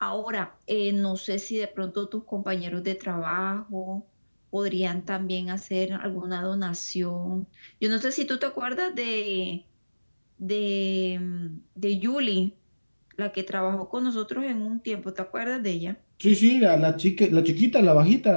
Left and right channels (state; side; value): inverted; both; correlation -1.00